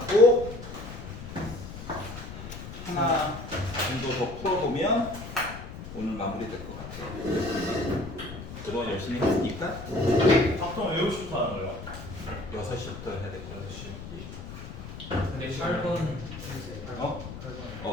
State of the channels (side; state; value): left; noise; rumble, 11 dB below the sound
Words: 하나 정도 더 풀어보면 오늘 마무리될 것 같아요. 그동안 열심히 했으니까 보통 외우시부터 하는 거예요? 6시부터 해야 될 거야. 6시. 근데 8번 어?